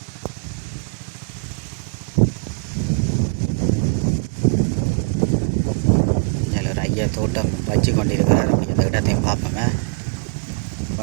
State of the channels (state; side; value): quieter; left; 33.4 dB